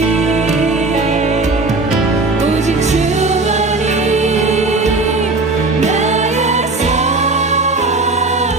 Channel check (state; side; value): quieter; left; 3.4 dB